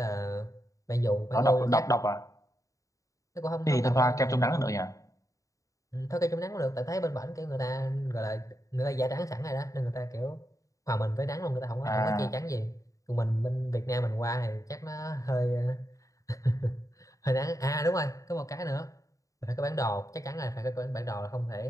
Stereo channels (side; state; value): right; late; 0.16 ms